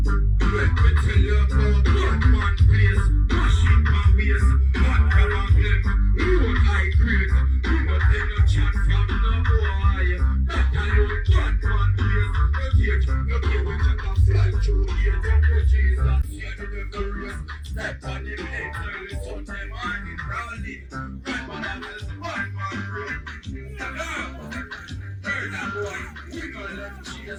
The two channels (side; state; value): both; identical; correlation 1.00